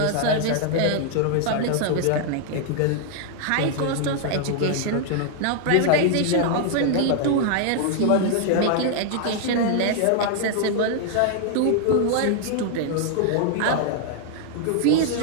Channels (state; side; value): different; both; correlation 0.00